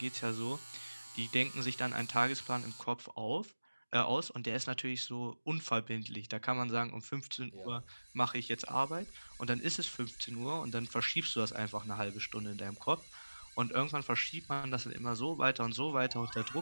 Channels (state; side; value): inverted; both; correlation -1.00